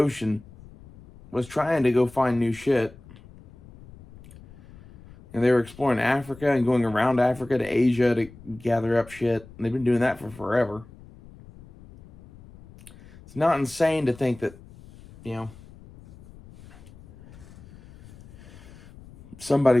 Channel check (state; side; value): noise; left; rumble, 21 dB below the sound